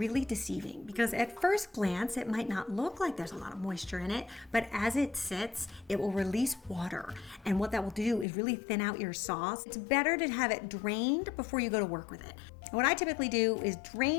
deceiving because at first glance it might not look like there's a lot of moisture in it, but as it sits, it will release water. And what that will do is really thin out your sauce. It's better to have it drained before you go to work with it. What I typically do is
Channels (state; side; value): drops out; right; at 8.2 s